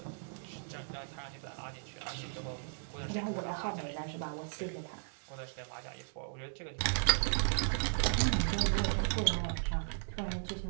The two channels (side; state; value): left; silent; digital silence